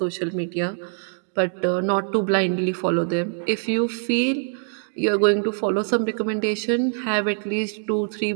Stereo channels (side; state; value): left; silent; digital silence